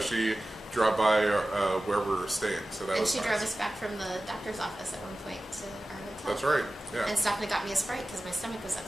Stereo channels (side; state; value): both; normal; correlation 0.96